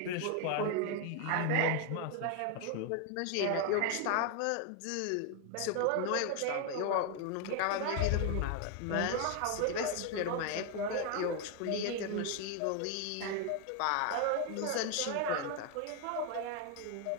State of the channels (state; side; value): different; both; correlation 0.01